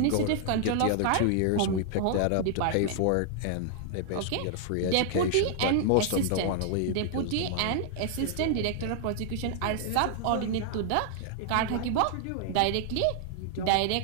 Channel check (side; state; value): both; different; correlation 0.00